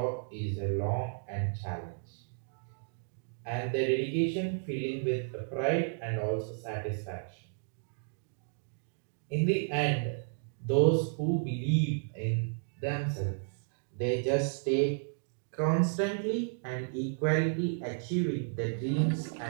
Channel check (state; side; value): silent; left; digital silence